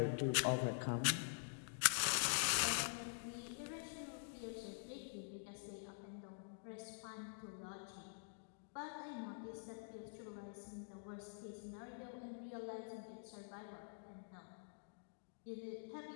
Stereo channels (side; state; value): right; silent; digital silence